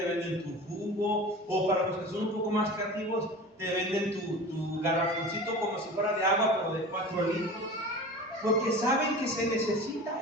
venden tu jugo, o para los que son un poco más creativos, te venden tu garrafoncito como si fuera de agua, pero de 4 litros. Porque saben que se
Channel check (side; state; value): both; normal; correlation 0.35